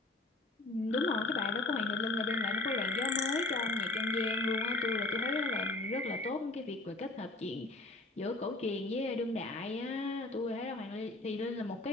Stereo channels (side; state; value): right; quieter; 3.0 dB